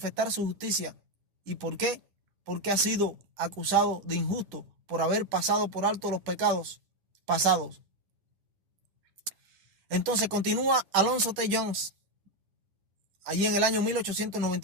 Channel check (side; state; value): left; late; 10 ms